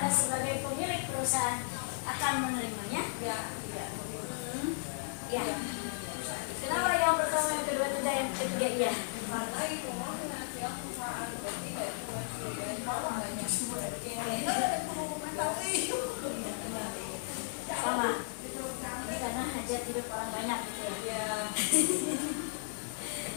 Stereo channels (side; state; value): right; silent; 55 dB below the other